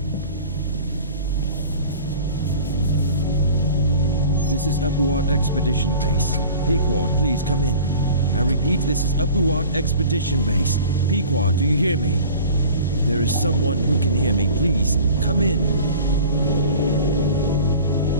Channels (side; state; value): both; inverted; correlation -0.42